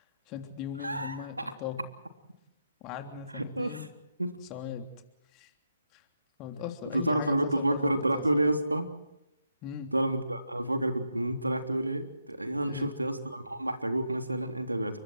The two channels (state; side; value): inverted; both; correlation -0.82